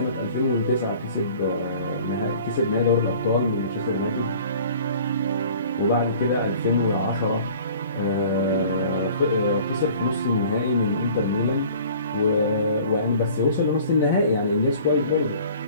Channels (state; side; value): inverted; both; correlation -0.48